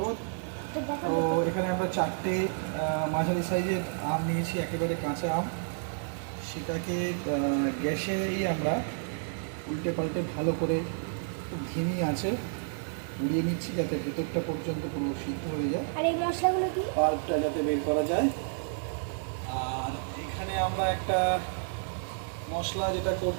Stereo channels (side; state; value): left; silent; digital silence